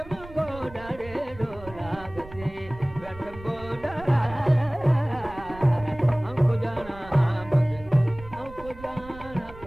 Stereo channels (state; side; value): noise; right; rumble, 17 dB below the sound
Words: गोडा रे डोला गसी रथम गोडा हमको जाना हमको जाना